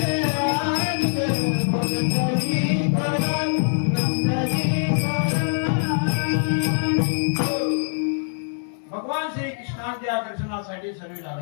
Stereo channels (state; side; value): silent; right; digital silence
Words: भगवान श्री कृष्णाच्या दर्शनासाठी सर्व